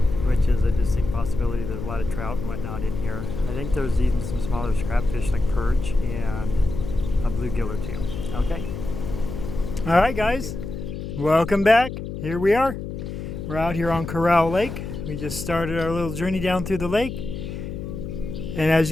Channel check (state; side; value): noise; left; hum, 7 dB below the sound